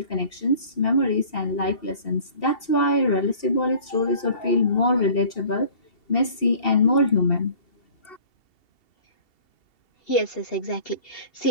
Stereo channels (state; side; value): late; right; 2.7 ms